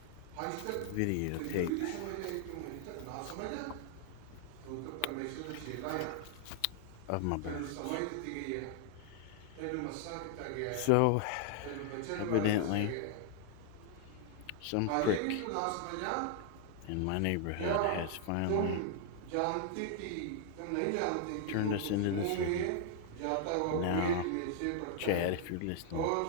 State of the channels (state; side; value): different; both; correlation 0.00